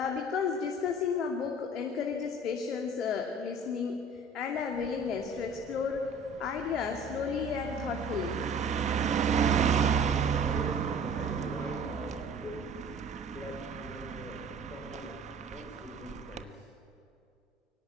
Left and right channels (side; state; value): both; normal; correlation 0.46